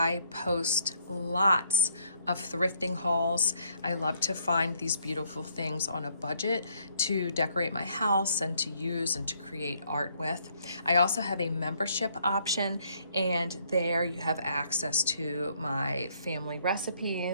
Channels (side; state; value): both; inverted; correlation -0.68